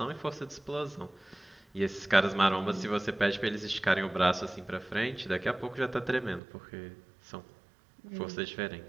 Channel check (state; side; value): drops out; left; at 6.4 s